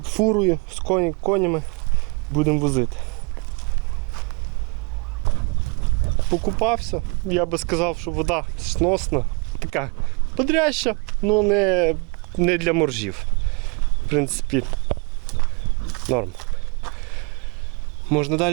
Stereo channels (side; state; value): left; quieter; 30.7 dB